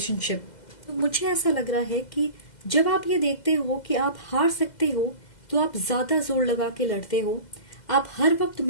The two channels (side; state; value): right; late; 2.0 ms